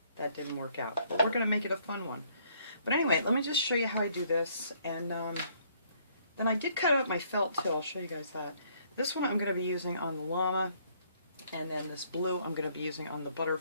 that didn't work out. But we're going to make it a fun one. But anyway, let me just show you how I do this. And then I did cut out my felt too. I'll show you guys that. This one I'm going to be using on the llama. And then this blue I'm going to be using on the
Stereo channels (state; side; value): inverted; both; correlation -0.65